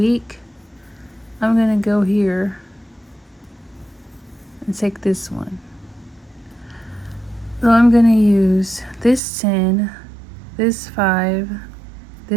I'm going to go here and take this one. So I'm going to use this 10, this 5,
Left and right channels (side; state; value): left; drops out; at 9.2 s